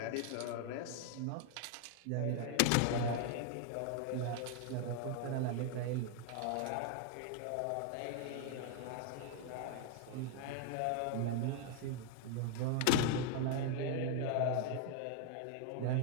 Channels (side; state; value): both; different; correlation 0.00